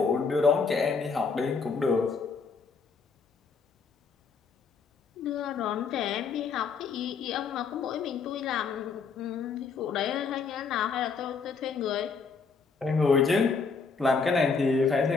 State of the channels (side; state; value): right; quieter; 5.1 dB